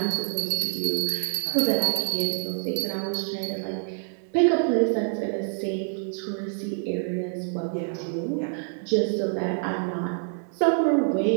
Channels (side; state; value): left; silent; digital silence